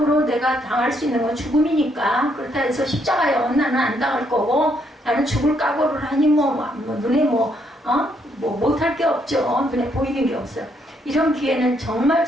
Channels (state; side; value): normal; both; correlation 0.73